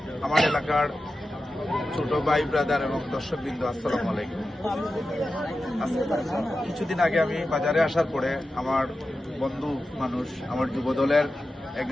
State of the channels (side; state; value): both; normal; correlation 0.92